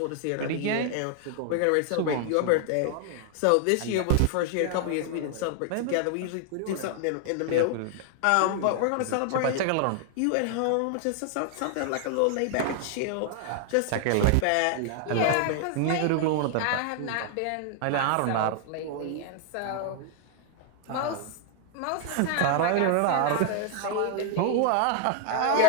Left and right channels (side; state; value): both; different; correlation 0.00